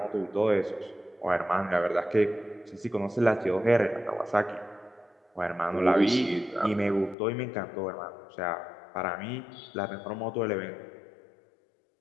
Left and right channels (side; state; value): right; drops out; at 7.2 s